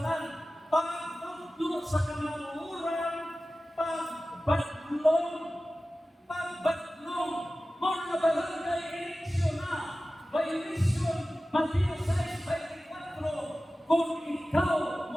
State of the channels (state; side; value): normal; both; correlation 0.96